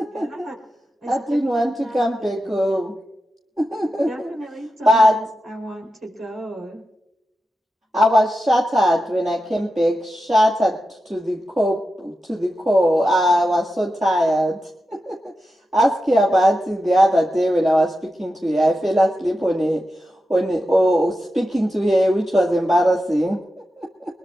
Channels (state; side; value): normal; both; correlation 0.90